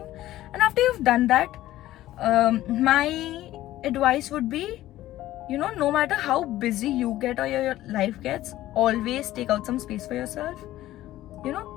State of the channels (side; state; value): right; quieter; 14.8 dB